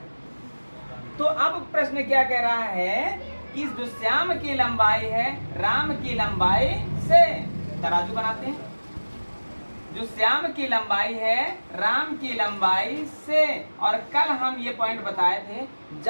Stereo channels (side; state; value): both; inverted; correlation -1.00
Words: तो अब प्रश्न क्या कह रहा है कि जो श्याम की लंबाई है राम की लंबाई से, तराजू बनाते हैं, जो श्याम की लंबाई है राम की लंबाई से, और कल हम ये पॉइंट बताए थे